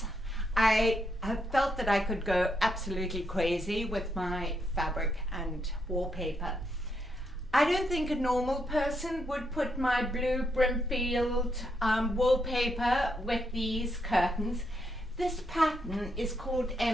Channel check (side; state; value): both; normal; correlation 0.79